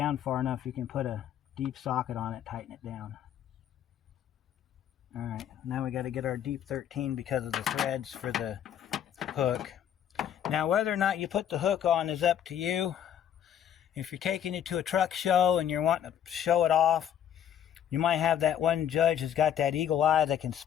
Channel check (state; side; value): quieter; right; 9.8 dB